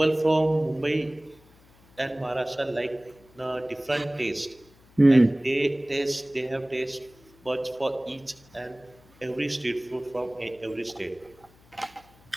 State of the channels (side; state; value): left; noise; hum, 28 dB below the sound